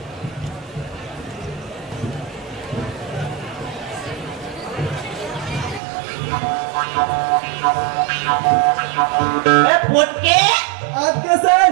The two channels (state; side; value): drops out; left; at 5.8 s